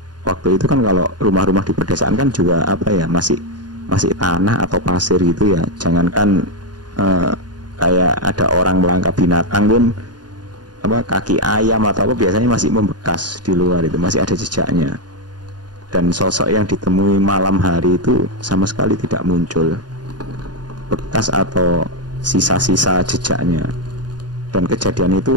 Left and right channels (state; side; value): late; left; 0.70 ms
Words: waktu itu kan, kalau rumah-rumah di pedesaan kan juga masih tanah atau pasir gitu ya. Jangankan kayak ada orang melangkah binatang pun, kaki ayam atau apa biasanya masih membekas di luar, itu masih ada jejaknya. Dan sosok yang ditemui malam hari itu sama sekali tidak muncul bekas atau sisa-sisa jejaknya. Dan kejadian